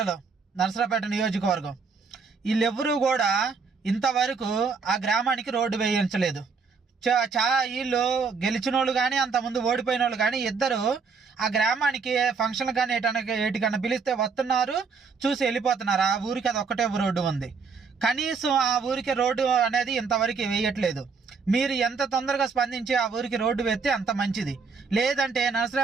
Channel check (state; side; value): quieter; left; 5.2 dB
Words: నర్సరావుపేట నియోజకవర్గం, వీళ్ళెవరూ కూడా ఇంతవరకు ఆ గ్రామానికి రోడ్డు వేయించలేదు. వీళ్ళు గెలిచిన వాళ్ళు కానీ అంతకుముందు ఓడిపోయిన వాళ్ళు కానీ ఇద్దరు ఆ గ్రామానికి ఫంక్షన్ కానీ ఏటికన్నా పిలిస్తే వస్తున్నారు, చూసి వెళ్ళిపోతున్నారు. ఆ ఊరికి అది ఒక్కటే రోడ్డు ఉంది, కనీసం ఆ ఊరికి రోడ్డు అనేది ఇంతవరకు వేయట్లేదు. మీరు ఎంత తొందరగా స్పందించి ఆ ఊరికి రోడ్డు వేస్తే అంత మంచిది. లేదంటే